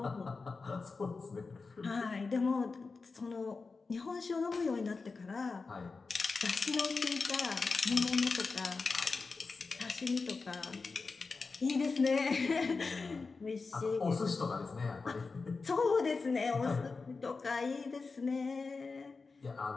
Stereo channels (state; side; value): quieter; right; 4.3 dB